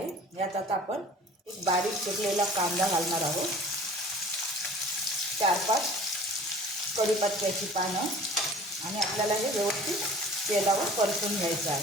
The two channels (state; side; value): normal; both; correlation 0.46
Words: यात आता आपण एक बारीक चिरलेला कांदा घालणार आहोत, 4-5 कढीपत्त्याची पानं, आणि आपल्याला हे व्यवस्थित तेलावर परतून घ्यायचं